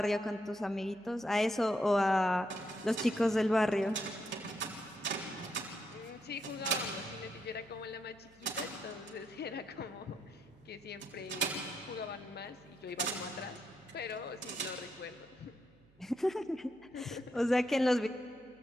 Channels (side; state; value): right; noise; hum, 30 dB below the sound